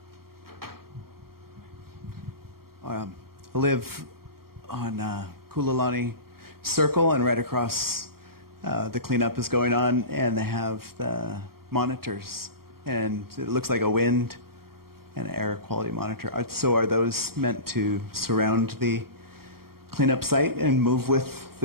I live on Kula Circle, and right across the cleanup is going on, and they have the monitors, and it looks like a wind and air quality monitor. So are those meant to surround the cleanup site and move with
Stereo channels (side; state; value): left; late; 0.94 ms